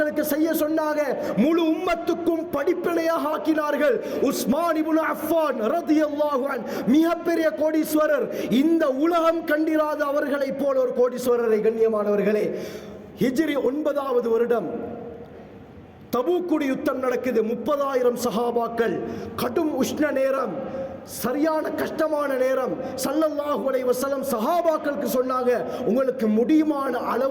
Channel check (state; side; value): identical; both; correlation 1.00